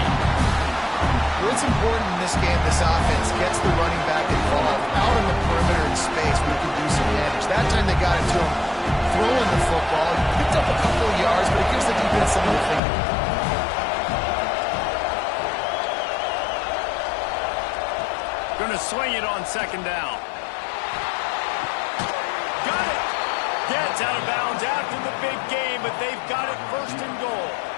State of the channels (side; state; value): right; drops out; at 12.8 s